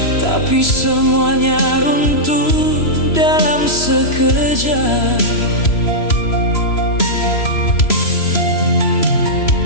tapi semuanya runtuh dalam sekejap.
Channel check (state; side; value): late; right; 3.0 ms